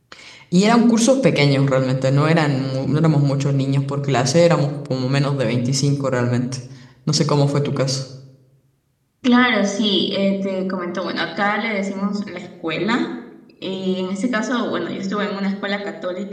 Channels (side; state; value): both; identical; correlation 1.00